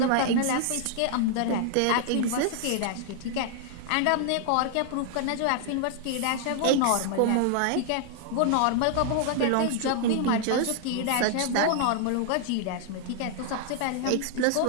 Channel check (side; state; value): both; different; correlation 0.00